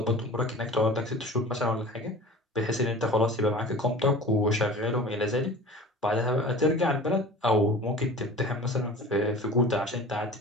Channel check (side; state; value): both; normal; correlation 0.40